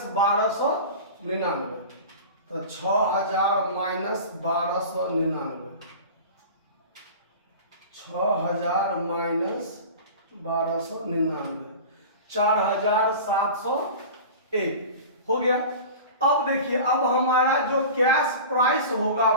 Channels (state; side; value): inverted; both; correlation -0.35